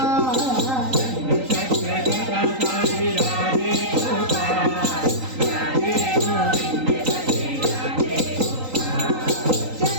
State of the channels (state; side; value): late; left; 3.9 ms